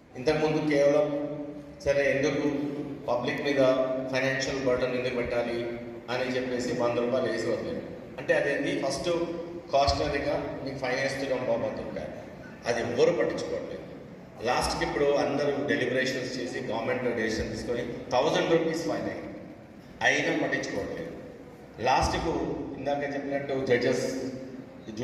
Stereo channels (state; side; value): identical; both; correlation 1.00